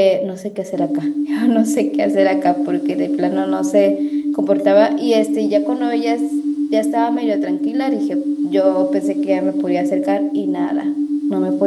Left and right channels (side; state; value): both; identical; correlation 1.00